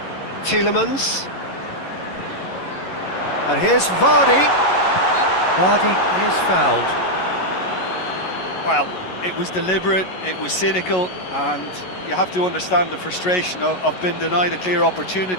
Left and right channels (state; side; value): late; right; 11 ms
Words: Tielemans. And here's Vardy. Vardy is fouled. Well, it was deliberate, it was cynical, and you have to understand the frustration of being denied a clear